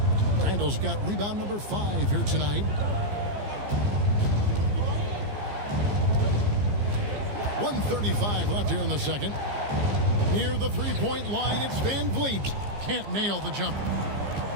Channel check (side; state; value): left; late; 15 ms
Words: Randle's got rebound number 5 here tonight. 1:35 left here in the second. Near the three-point line, it's Van Vliet. Can't nail the jumper.